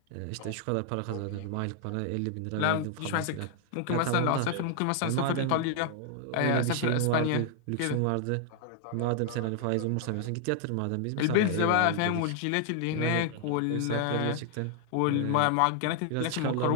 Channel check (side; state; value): both; different; correlation 0.00